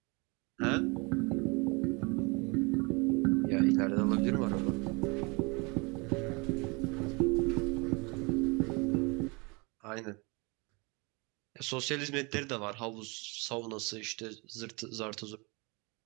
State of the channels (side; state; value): left; quieter; 29.0 dB